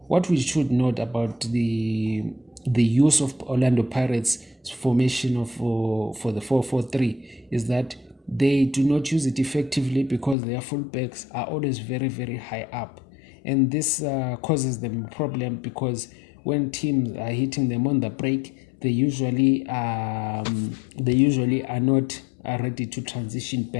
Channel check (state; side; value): drops out; right; at 10.4 s